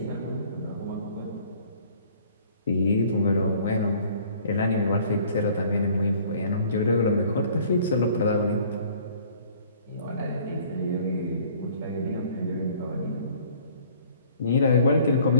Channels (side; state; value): both; inverted; correlation -0.54